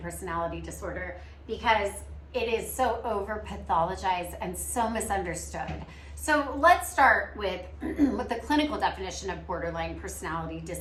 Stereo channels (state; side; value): identical; both; correlation 1.00